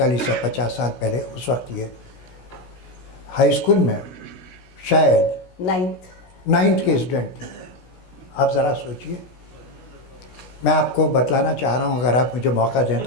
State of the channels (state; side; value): late; right; 16 ms